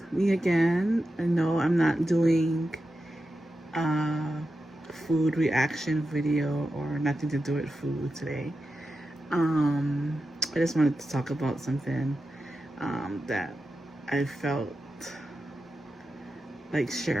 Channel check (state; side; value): normal; both; correlation 0.91